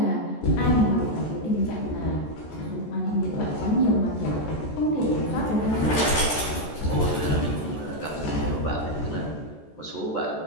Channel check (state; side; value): late; right; 14 ms